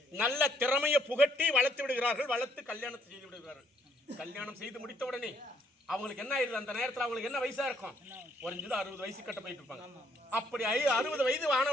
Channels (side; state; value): both; normal; correlation 0.69